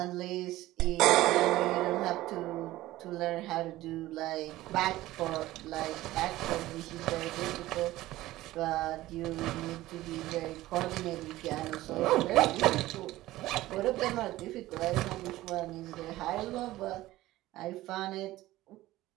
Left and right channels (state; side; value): quieter; left; 16.6 dB